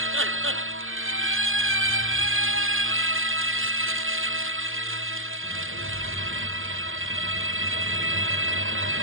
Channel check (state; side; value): late; left; 0.59 ms